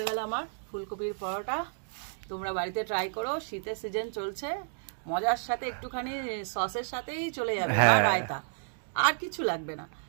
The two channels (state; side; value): silent; left; digital silence